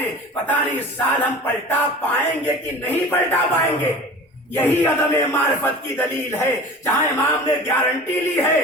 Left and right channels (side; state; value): both; normal; correlation 0.38